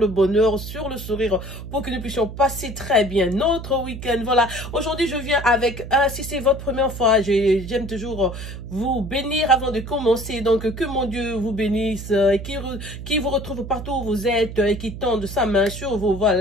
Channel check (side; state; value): right; noise; hum, 10 dB below the sound